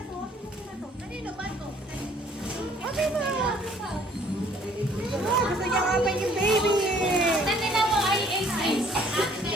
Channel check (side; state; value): both; normal; correlation 0.59